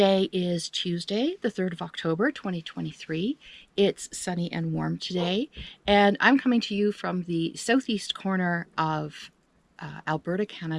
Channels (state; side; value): identical; both; correlation 1.00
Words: is Tuesday, the 3rd of October, 2023. It's sunny and warm today, and I'm coming to you from the southeast corner of Alberta,